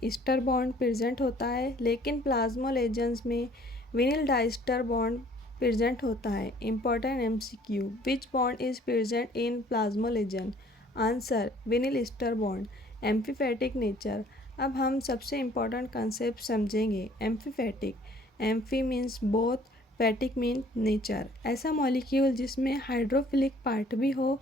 ईस्टर बॉन्ड प्रेजेंट होता है, लेकिन प्लाज्मोलेजेंस में विनिल डाइस्टर बॉन्ड प्रेजेंट होता है। Important MCQ, which bond is present in plasmalogen? Answer vinyl ester bond. Amphipathic nature, अब हम सबसे इम्पॉर्टेंट कंसेप्ट समझेंगे। Amphipathic, amphi means both, phatic mean nature. ऐसा मॉलिक्यूल जिसमें हाइड्रोफिलिक पार्ट भी हो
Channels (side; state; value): both; normal; correlation 0.57